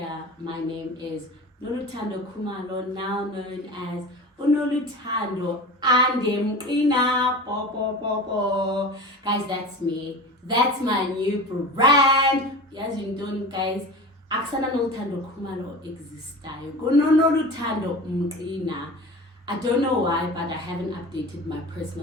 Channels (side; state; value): both; normal; correlation 0.33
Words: my name is Nolu Kumalo, now known as Nolu Andemqina. Guys, that's me. That's my new brand. As you know, guys, Aksana Nolu Kumalo exists. Nolu Mqina. I don't know why, but I haven't updated my